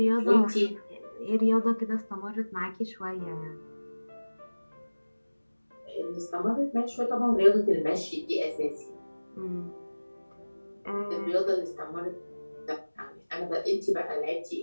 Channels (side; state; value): both; inverted; correlation -1.00